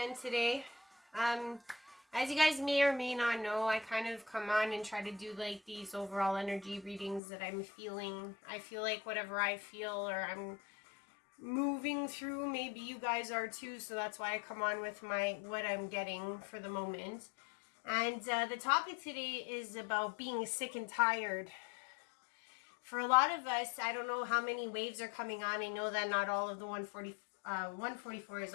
today. As you guys may or may not know, I kind of come on and try to do like these overall energy readings that I'm feeling. I feel like whatever I feel or I'm moving through, maybe you guys are too, so that's why I come on with what I'm getting for the moment. And the topic today is about being sick and tired. For a lot of us, I don't know how many waves are coming on. I know that not all of the 144 is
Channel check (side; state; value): right; drops out; at 7.2 s